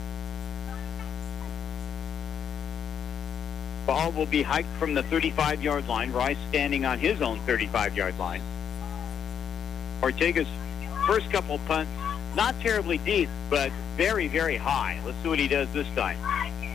Ball will be hiked from the 35-yard line. Rice standing on his own 35-yard line. Ortega's first couple punts, not terribly deep, but very, very high. Let's see what he does this time.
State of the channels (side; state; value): right; quieter; 8.3 dB